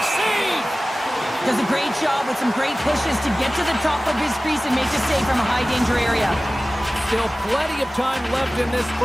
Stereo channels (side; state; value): both; normal; correlation 0.97